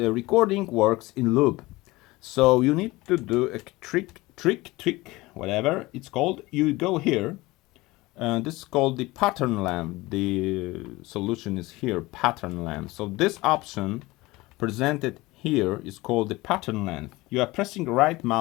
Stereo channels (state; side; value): quieter; right; 20.7 dB